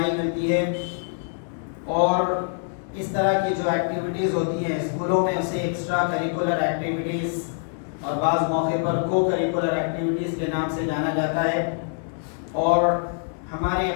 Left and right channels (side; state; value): right; silent; digital silence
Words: ملتی ہے، اور اس طرح کی جو ایکٹیویٹیز ہوتی ہیں اسکولوں میں اسے ایکسٹرا کریکولر ایکٹیویٹیز اور بعض موقع پر کو کریکولر ایکٹیویٹیز کے نام سے جانا جاتا ہے، اور ہمارے